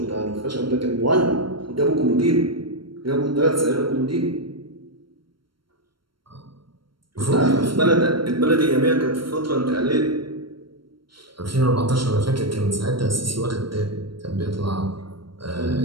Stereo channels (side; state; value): left; late; 0.73 ms